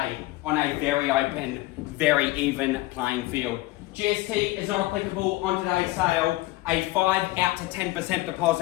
on a very open, very even playing field. GST is not applicable on today's sale. A 5 out to 10%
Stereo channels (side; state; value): right; quieter; 19.1 dB